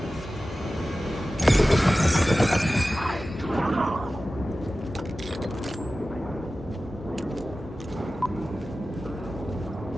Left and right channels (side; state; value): both; normal; correlation 0.95